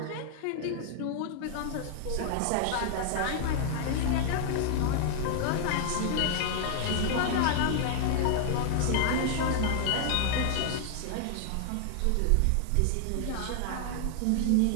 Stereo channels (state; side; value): different; both; correlation -0.01